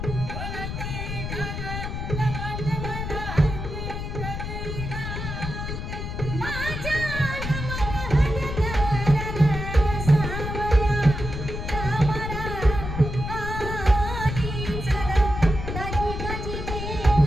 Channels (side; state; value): left; noise; rumble, 5 dB below the sound